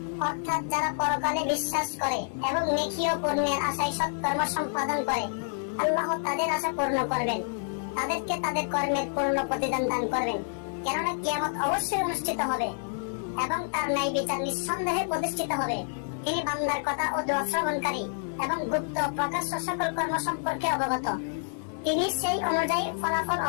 অর্থাৎ যারা পরকালে বিশ্বাস করে এবং নেকি ও পুণ্যের আশায় সৎকর্ম সম্পাদন করে, আল্লাহ তাদের আশা পূর্ণ করবেন, তাদেরকে তাদের কর্মের পূর্ণ প্রতিদান দান করবেন। কেননা কিয়ামত অবশ্যই অনুষ্ঠিত হবে এবং তার ন্যায় বিচার নিঃসন্দেহে প্রতিষ্ঠিত হবে। তিনি বান্দার কথা ও দোয়া শ্রবণকারী এবং গুপ্ত প্রকাশ্য সকল কর্ম সম্পর্কে অবগত। তিনি সেই অনুযায়ী ফলাফল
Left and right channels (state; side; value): silent; right; 59 dB below the other